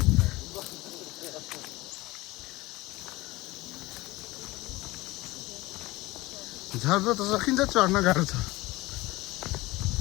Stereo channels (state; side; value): quieter; right; 20.1 dB